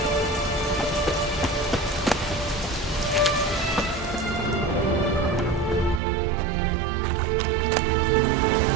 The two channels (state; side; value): drops out; left; at 6.0 s